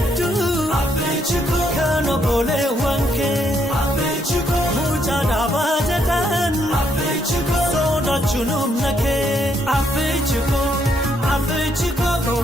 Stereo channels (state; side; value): normal; both; correlation 0.73